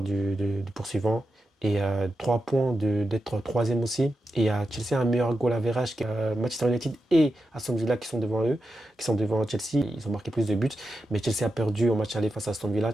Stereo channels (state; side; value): normal; both; correlation 0.89